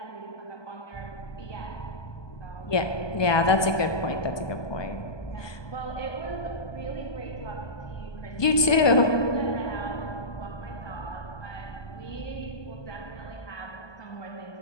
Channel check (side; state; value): right; late; 1.2 ms